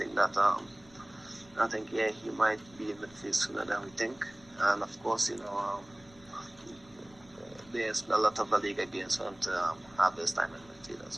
that he might be in midfield sooner than we think. And of course, there's a lot of the Liga games for him to have this time in midfield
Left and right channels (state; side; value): noise; left; rumble, 25 dB below the sound